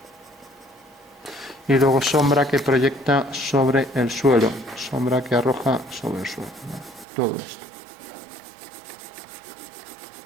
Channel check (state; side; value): drops out; left; at 7.1 s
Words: y luego sombra que proyecta sobre el suelo, sombra que arroja sobre el suelo, ¿vale? Todo esto.